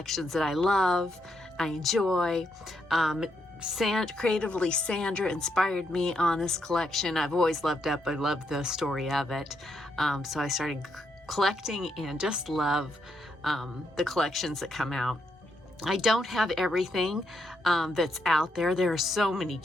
that I love, I enjoy. Creatively, Sandra inspired me on this collection. I've always loved Up. I love the story of it. So I started collecting and just love the collections that come out. I don't have everything that's out there. There are so many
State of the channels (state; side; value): normal; both; correlation 0.79